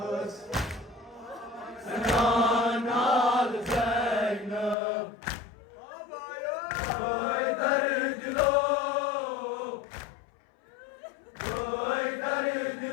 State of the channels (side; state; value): right; drops out; at 4.8 s